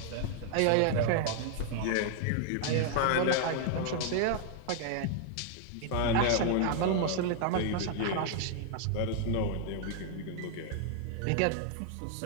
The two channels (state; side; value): different; both; correlation 0.00